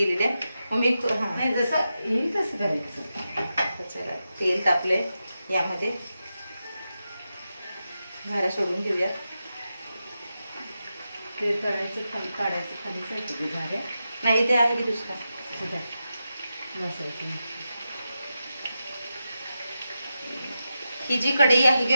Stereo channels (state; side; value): inverted; both; correlation -0.89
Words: आहे. मम्मी जसं येईल तसं करायचं. चला तेल तापलंय, यामध्ये घाऱ्या सोडून घेऊया. ते तळायचं खाली काढायचं, खाली जायचं झाल्या नाही ते आहे की दुसरा बसायचं. ही जी कढई आहे